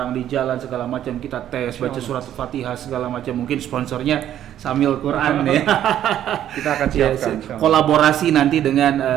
di jalan segala macam, kita tes, baca surat Fatihah segala macam, mungkin sponsornya Syamil Quran ya. Kita akan siapkan kolaborasi nanti dengan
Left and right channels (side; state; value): left; quieter; 11.2 dB